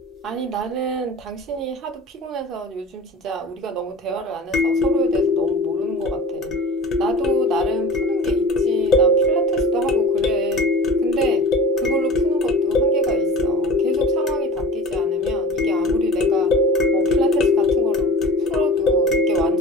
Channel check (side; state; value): both; normal; correlation 0.38